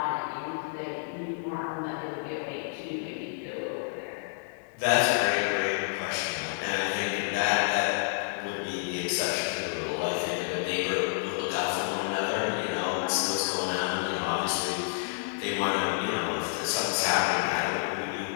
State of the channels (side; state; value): right; silent; digital silence